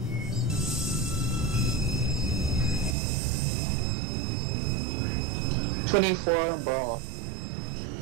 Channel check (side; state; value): left; drops out; at 3.0 s